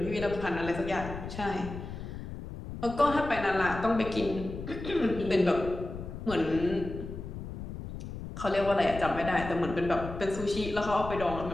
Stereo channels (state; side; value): noise; left; rumble, 9 dB below the sound